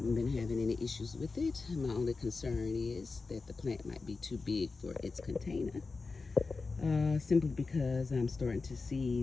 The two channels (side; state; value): right; quieter; 4.1 dB